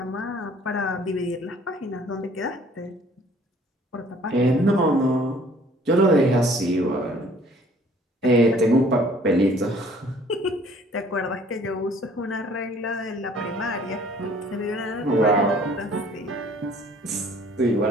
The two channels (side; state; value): both; normal; correlation 0.56